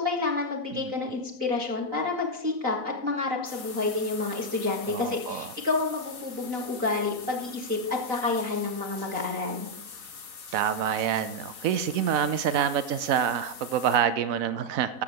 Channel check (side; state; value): left; late; 4.0 ms